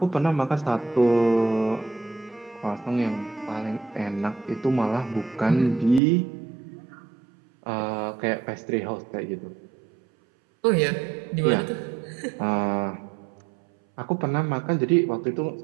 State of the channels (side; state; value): left; drops out; at 6.0 s